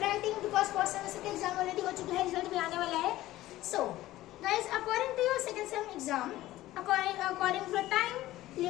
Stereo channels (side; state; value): right; quieter; 15.9 dB